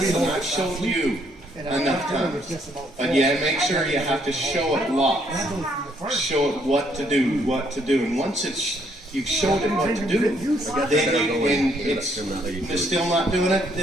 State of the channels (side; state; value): both; normal; correlation 0.69